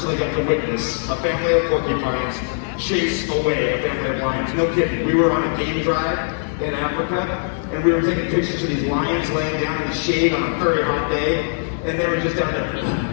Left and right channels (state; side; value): silent; right; digital silence